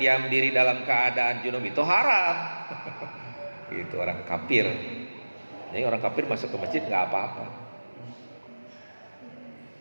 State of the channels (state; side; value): inverted; both; correlation -1.00